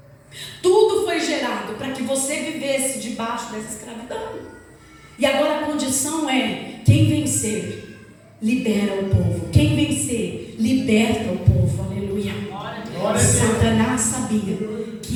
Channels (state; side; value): identical; both; correlation 1.00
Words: Tudo foi gerado para que você vivesse debaixo dessa escravidão. E agora a condição é: quem vencer, libera o povo. Quem vencer, liberta o povo. Aleluia. Satanás sabia